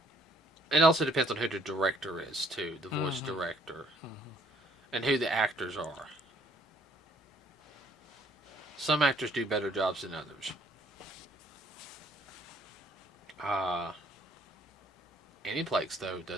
it also depends on who the director is too, the voice Mm-hmm. director, Mm-hmm. and who the actors are. Some actors do better jobs than others. Uh, Aniplex though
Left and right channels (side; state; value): both; normal; correlation 0.63